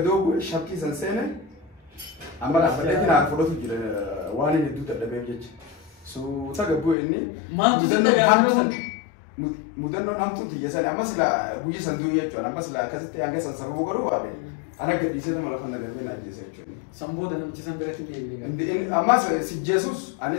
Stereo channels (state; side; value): drops out; right; at 7.0 s